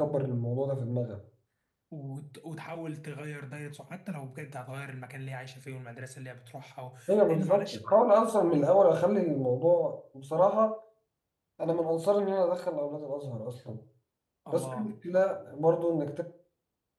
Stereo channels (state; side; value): identical; both; correlation 1.00